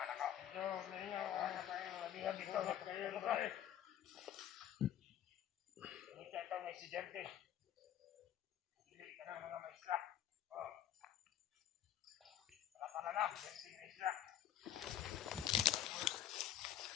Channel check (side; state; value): right; quieter; 11.0 dB